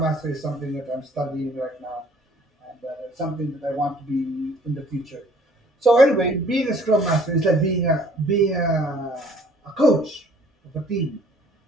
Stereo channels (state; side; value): normal; both; correlation 0.56